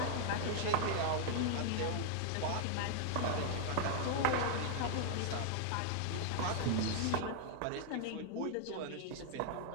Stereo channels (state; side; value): different; both; correlation 0.00